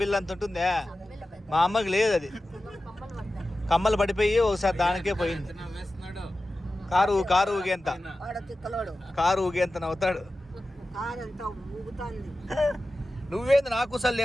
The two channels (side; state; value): both; normal; correlation 0.94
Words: బిల్లు అంత ఉంటుందే మా అమ్మకి లేదు అది. కమ్మలు పడిపోయి ఒకసారి దానికే పోయింది. కారు ఊగేంత నవ్వుతాడు. నువ్వేంది నాకు సార్